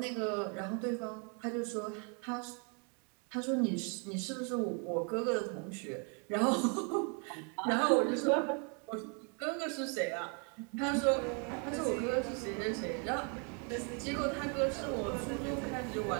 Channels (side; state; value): left; quieter; 37.3 dB